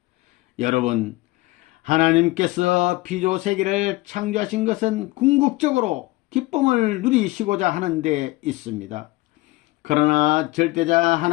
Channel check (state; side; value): quieter; right; 20.6 dB